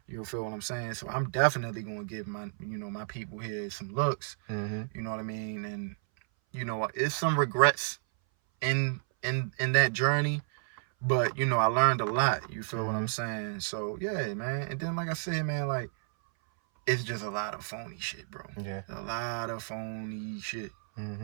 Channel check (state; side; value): silent; left; 57 dB below the other